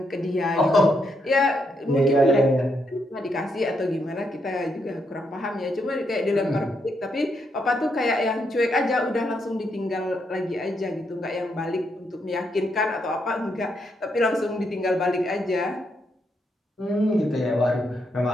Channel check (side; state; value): both; normal; correlation 0.78